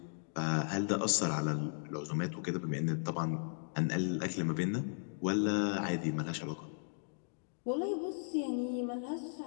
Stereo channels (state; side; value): silent; right; digital silence